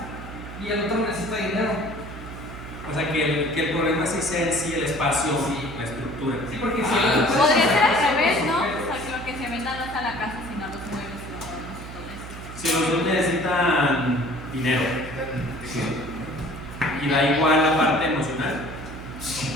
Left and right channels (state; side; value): noise; right; hum, 12 dB below the sound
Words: Y el otro necesita dinero. O sea, que el problema sí sea en sí el espacio, Sí. la estructura. Sí, porque si el otro Podría ser al revés, ¿no? O sea, que lo que se venda no es a la casa, sino a los muebles y los adornos y todo eso. Si los dos necesitan dinero Sí. y da igual la parte emocional.